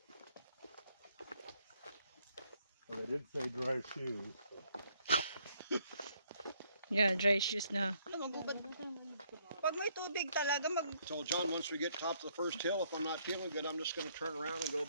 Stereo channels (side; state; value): both; inverted; correlation -0.69